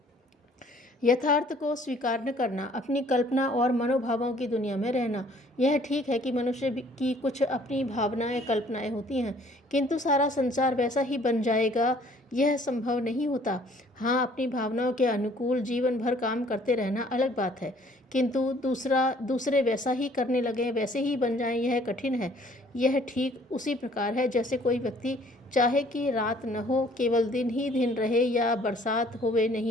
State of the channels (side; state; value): both; normal; correlation 0.58